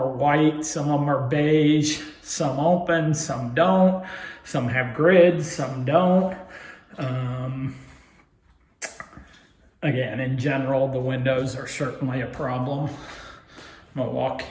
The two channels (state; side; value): identical; both; correlation 1.00